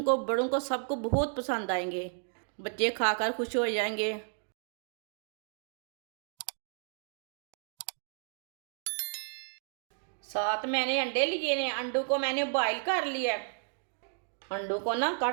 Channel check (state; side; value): silent; left; digital silence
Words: को बड़ों को सबको बहुत पसंद आएंगे। बच्चे खाकर खुश हो जाएंगे। साथ मैंने अंडे लिए हैं। अंडों को मैंने बॉईल कर लिया है। अंडों को ना